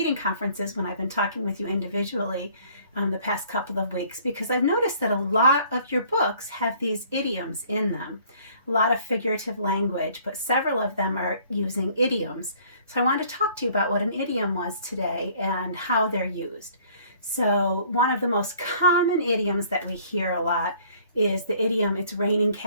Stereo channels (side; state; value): both; inverted; correlation -0.56